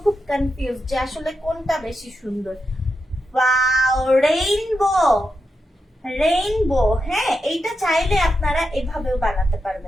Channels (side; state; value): both; normal; correlation 0.87